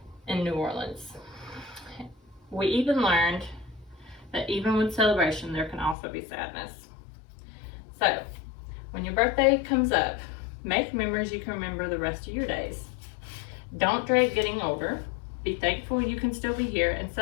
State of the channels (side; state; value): right; drops out; at 6.0 s